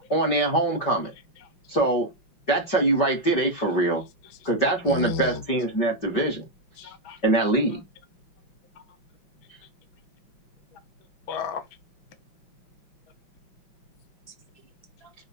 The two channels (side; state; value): right; late; 5.2 ms